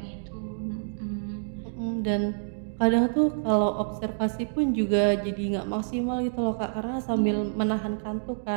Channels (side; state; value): left; silent; digital silence